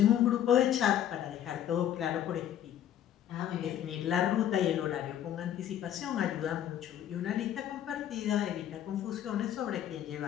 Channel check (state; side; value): quieter; right; 10.7 dB